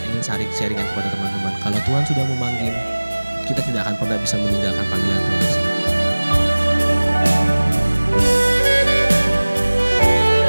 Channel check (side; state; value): both; inverted; correlation -1.00